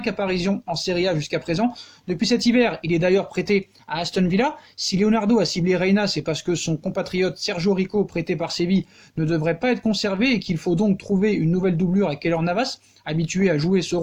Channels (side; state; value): both; identical; correlation 1.00